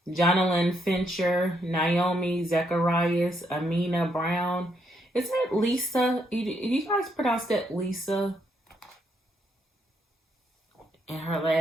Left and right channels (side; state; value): both; normal; correlation 0.75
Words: Jonalyn Fincher, Naomi Zacharias, Amina Brown. Is that Lisa? You guys pronounce that Lisa? And her